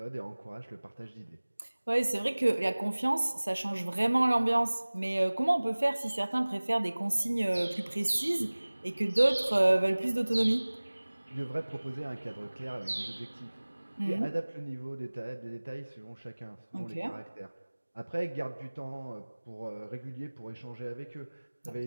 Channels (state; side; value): inverted; both; correlation -1.00